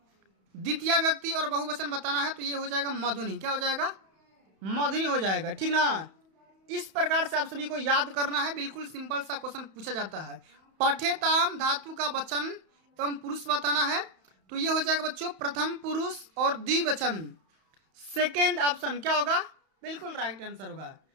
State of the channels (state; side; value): late; left; 31 ms